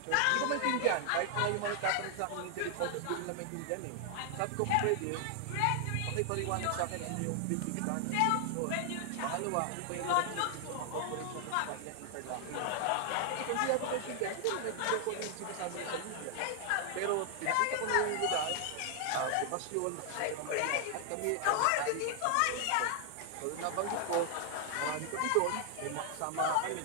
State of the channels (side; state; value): both; different; correlation 0.00